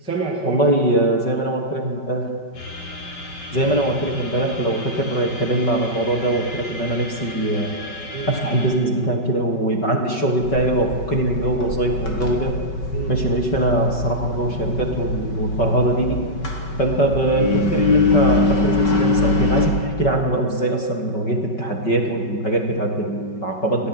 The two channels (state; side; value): late; right; 5.3 ms